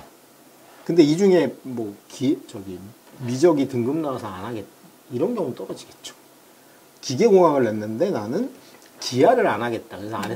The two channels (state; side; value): identical; both; correlation 1.00